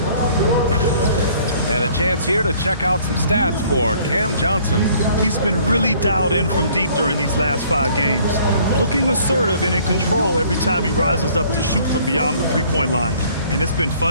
And a chance here to check out some stats for Cam Johnson. He's been really dialed in from deep during these last 5 games. Looking assertive and in control every time he rises up to shoot from beyond the three-point line. And it's been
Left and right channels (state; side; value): inverted; both; correlation -0.58